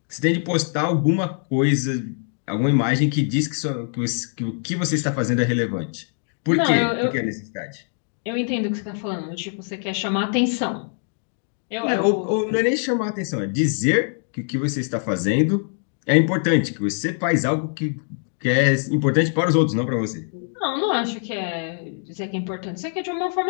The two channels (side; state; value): right; silent; 57 dB below the other